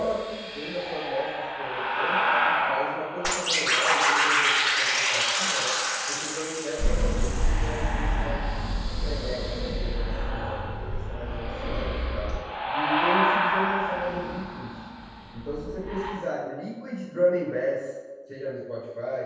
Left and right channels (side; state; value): both; identical; correlation 1.00